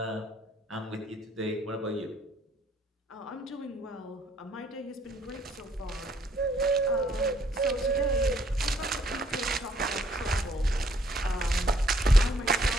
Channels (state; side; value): normal; both; correlation 0.66